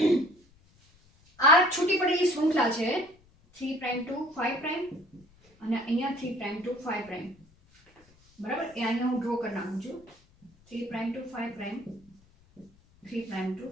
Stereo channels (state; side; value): noise; left; rumble, 30 dB below the sound